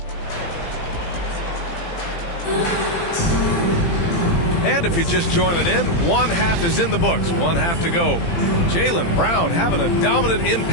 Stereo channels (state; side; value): late; right; 18 ms